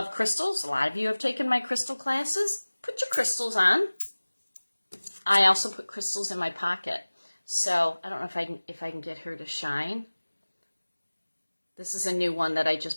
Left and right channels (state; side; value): inverted; both; correlation -1.00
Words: crystals. A lot of you have taken my crystal classes. Put your crystals on. I also put crystals in my pocket. So I don't know if I can get her to shine. This is a new one that I